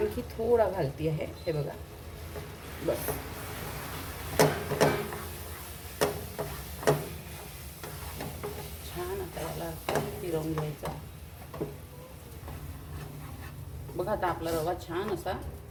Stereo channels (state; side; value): identical; both; correlation 1.00